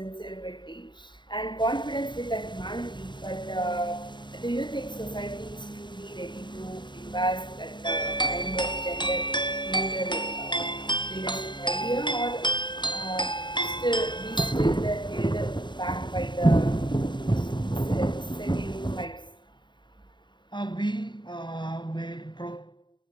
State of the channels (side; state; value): right; late; 0.22 ms